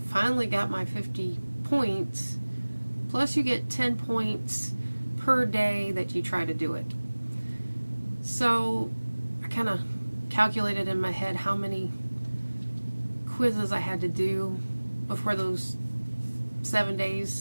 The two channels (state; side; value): inverted; both; correlation -1.00